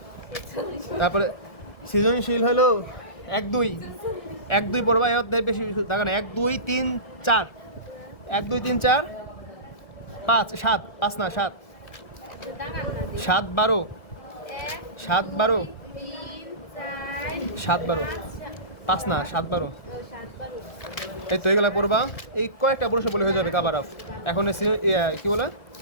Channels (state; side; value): late; right; 1.7 ms